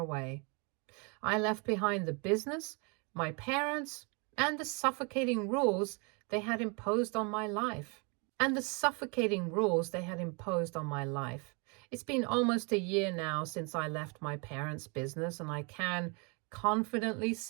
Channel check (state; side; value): quieter; left; 32.7 dB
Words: I left behind the business, my parents, and the suffocating rules they had imposed on my life. It's been almost a year now since I left my parents' business, and I can confidently